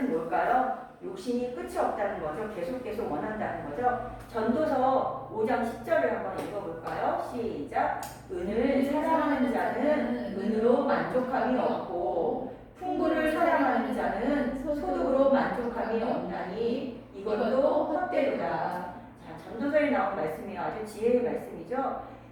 뭘까요? 욕심이 끝이 없다는 거죠. 계속 원한다는 거죠. 전도서 5장 10절을 한번 읽어볼까요? 시작. 은을 사랑하는 자는 은으로 만족함이 없고 풍부를 사랑하는 자는 소득으로 만족함이 없나니 이것도 헛되도다. 자, 전도서에 나온 말씀이에요. 아주 지혜의 말씀이죠.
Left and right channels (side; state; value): both; identical; correlation 1.00